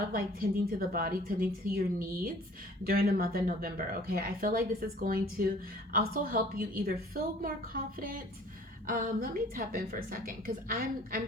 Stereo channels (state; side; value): normal; both; correlation 0.51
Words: of like tending to the body, tending to your needs during the month of November. Okay, I feel like this is going to also help you either feel more confident. Let me tap in for a second because